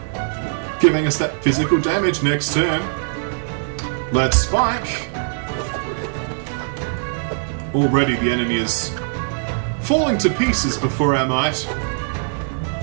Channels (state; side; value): silent; left; 65 dB below the other